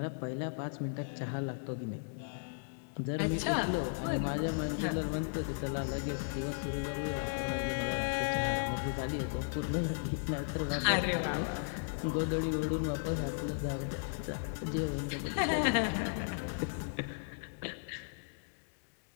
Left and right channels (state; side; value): silent; right; digital silence